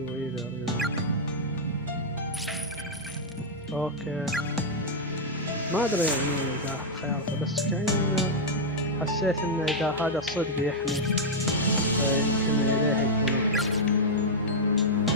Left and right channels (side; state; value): both; normal; correlation -0.04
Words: either, you know. Okay. ما أدري يعني إذا خيارته، بس كأن حسيت إن إذا هذا الصدق يحمي فيمكن إليه يكون أفضل.